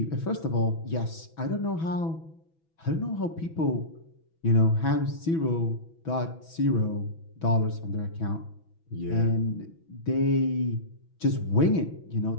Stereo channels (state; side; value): late; right; 6.1 ms